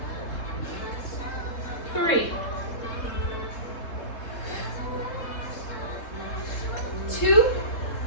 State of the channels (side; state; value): right; late; 3.7 ms